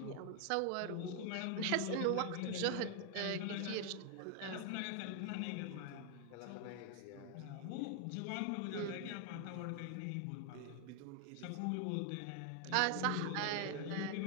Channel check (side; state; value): both; different; correlation 0.00